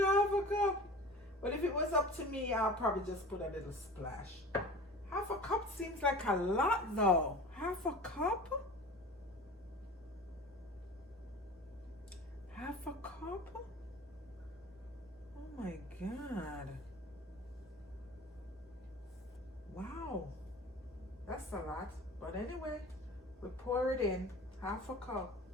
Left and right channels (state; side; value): normal; both; correlation 0.39